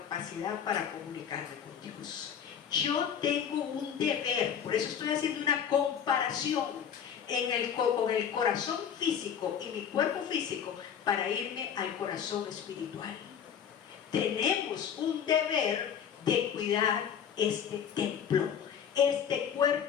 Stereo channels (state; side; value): quieter; right; 8.3 dB